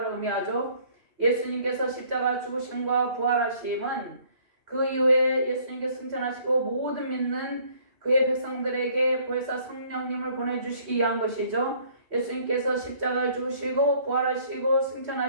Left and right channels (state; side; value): late; left; 2.7 ms